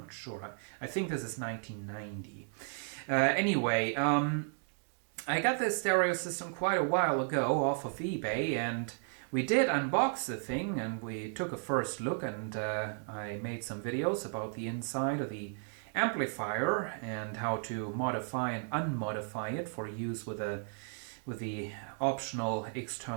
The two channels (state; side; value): silent; left; 55 dB below the other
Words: sure. I think this is 1990. Anyway, I got this stereo system quite a while ago off of eBay, and we did unbox the thing and we took a first look, and I made some videos about the inside of the amplifier and how to modify and unmodify it for use with the optional